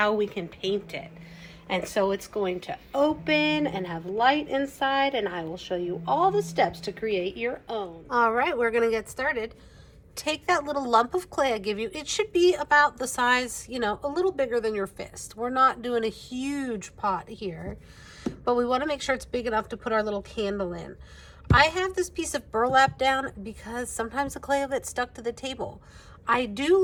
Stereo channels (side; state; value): both; identical; correlation 1.00